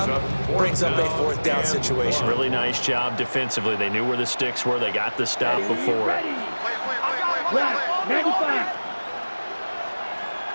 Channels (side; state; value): both; inverted; correlation -1.00